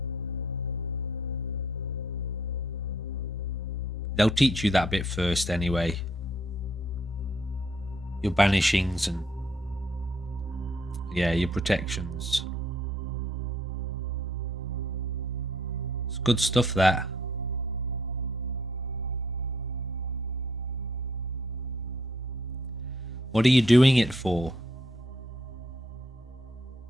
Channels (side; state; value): both; normal; correlation 0.68